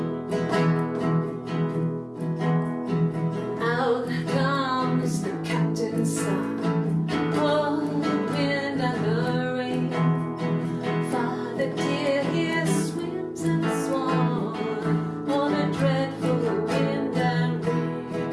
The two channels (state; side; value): identical; both; correlation 1.00